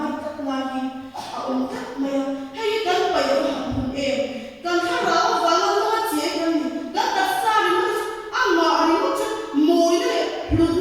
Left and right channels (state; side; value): identical; both; correlation 1.00